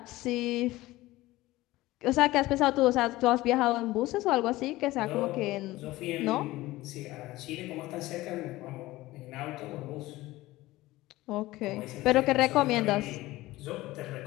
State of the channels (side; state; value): right; quieter; 18.0 dB